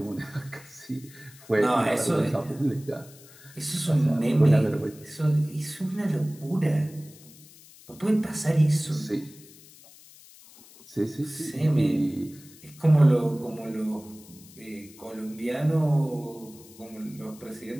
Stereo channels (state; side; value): noise; left; hiss, 22 dB below the sound